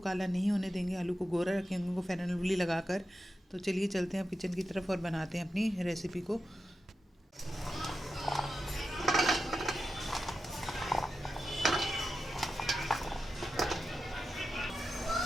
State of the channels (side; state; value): both; normal; correlation 0.90